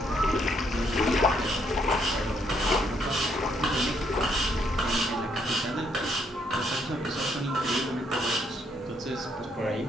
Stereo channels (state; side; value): normal; both; correlation 0.72